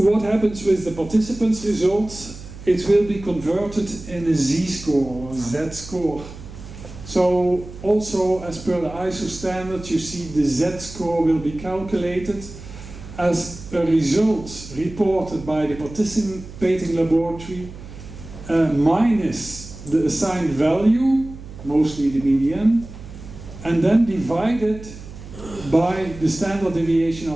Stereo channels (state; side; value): noise; right; hum, 14 dB below the sound